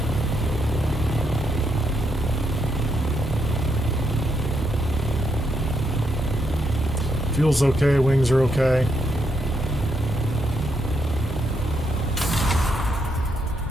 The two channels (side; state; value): both; normal; correlation 0.78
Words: Fuel's okay, wings are okay.